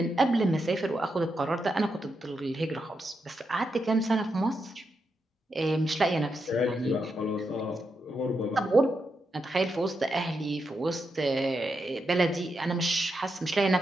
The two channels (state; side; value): normal; both; correlation 0.85